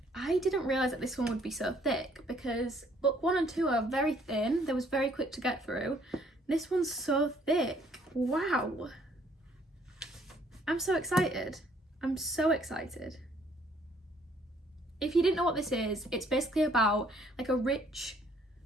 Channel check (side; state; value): both; normal; correlation 0.63